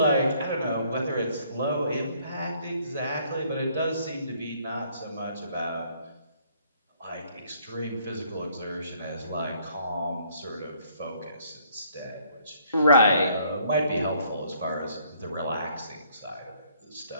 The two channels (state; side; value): inverted; both; correlation -0.64